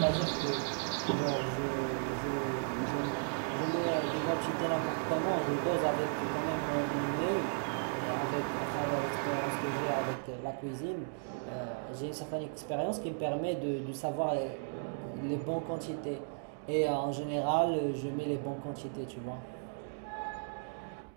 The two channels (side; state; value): left; silent; digital silence